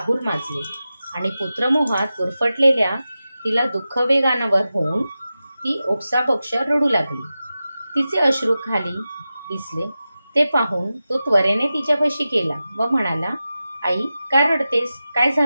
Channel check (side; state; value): both; inverted; correlation -0.93